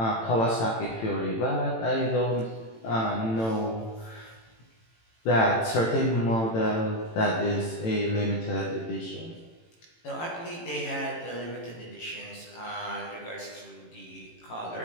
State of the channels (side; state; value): right; late; 18 ms